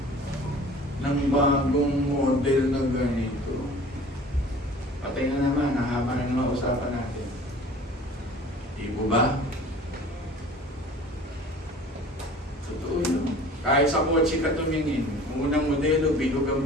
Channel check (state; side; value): normal; both; correlation 0.45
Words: ng bagong model na ganito. Patay na naman, nahaba na naman usapan natin. Di po ba? Totoo yun. Kahit sa kotse ka tumingin, unang modelo, bilog